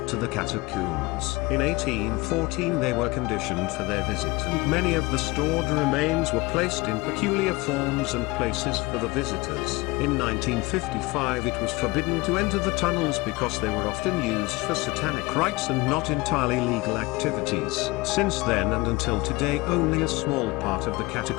to the catacombs. In 1814 they were conditioned for their visit, and many of the stored remains were placed in peculiar forms and places for the visitors. In 1955 it was forbidden to enter the tunnels because they were often used for satanic rites and not entirely legal activities. Since then and until today only a small part of the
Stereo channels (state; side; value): quieter; right; 22.8 dB